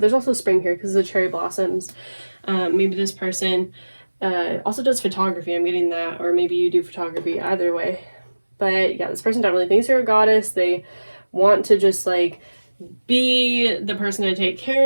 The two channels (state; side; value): inverted; both; correlation -1.00